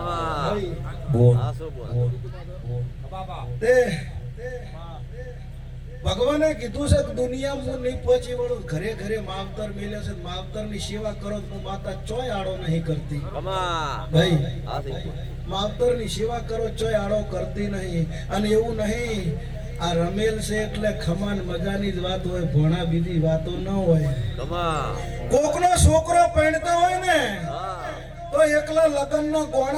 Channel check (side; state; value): both; identical; correlation 1.00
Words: ભગવાને કીધું છે કે દુનિયામાં હું નહીં પહોંચી વળું, ઘરે ઘરે માવતર મેલે છે, માવતર ની સેવા કરો તો માતા ચોય આડો નહીં કરતી. ભાઈ માવતર ની સેવા કરો ચોય આડો કરતી નહીં. અને એવું નહીં આ રમેલ છે એટલે ખમાન મજાની જ વાત હોય, ભોણા બીજી વાતો ન હોય. કોકનો છોકરો પરણતો હોય ને તો એકલા લગ્નનો ગોણ